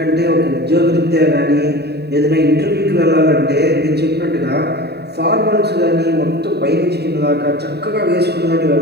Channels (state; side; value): late; left; 0.48 ms